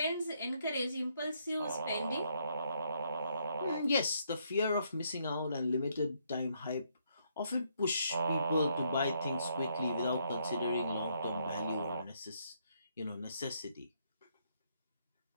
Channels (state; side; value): inverted; both; correlation -0.73